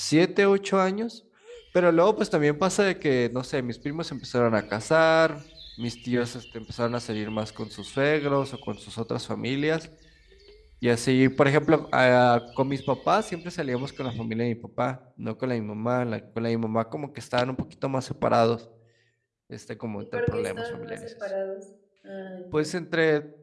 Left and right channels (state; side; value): identical; both; correlation 1.00